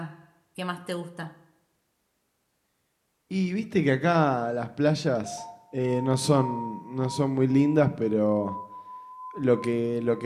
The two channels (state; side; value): identical; both; correlation 1.00